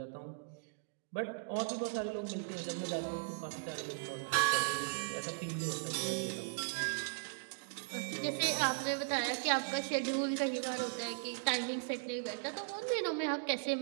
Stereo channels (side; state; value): left; silent; digital silence